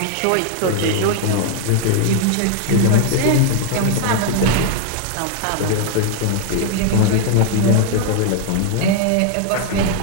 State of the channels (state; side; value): different; both; correlation 0.00